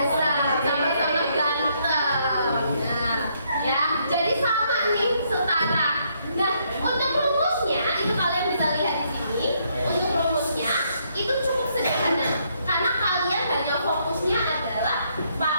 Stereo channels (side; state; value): both; inverted; correlation -0.72